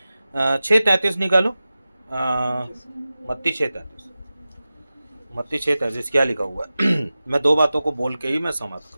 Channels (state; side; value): inverted; both; correlation -0.95